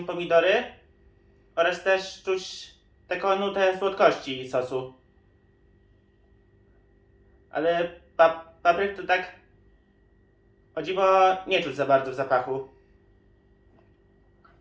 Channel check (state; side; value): identical; both; correlation 1.00